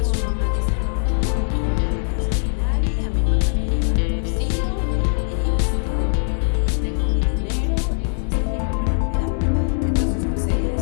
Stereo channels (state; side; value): silent; right; digital silence